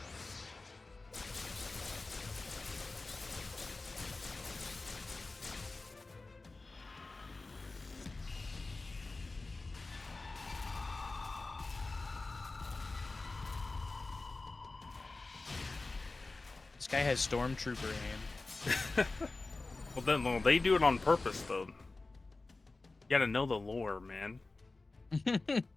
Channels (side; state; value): right; quieter; 3.4 dB